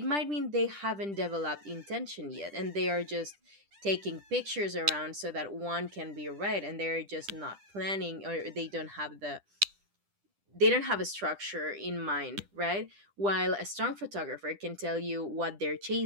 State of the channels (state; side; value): late; left; 10 ms